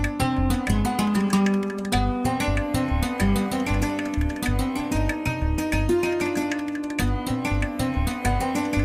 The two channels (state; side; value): identical; both; correlation 1.00